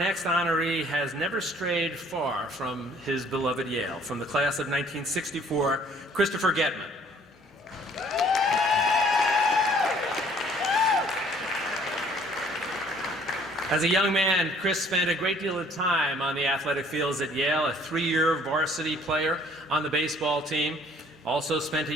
honoree has never strayed far from his beloved Yale. From the class of 1964, Christopher GETMAN. As a young man, Chris spent a great deal of time on the athletic fields at Yale, a 3-year varsity player on the baseball team, also spent a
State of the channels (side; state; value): both; normal; correlation 0.57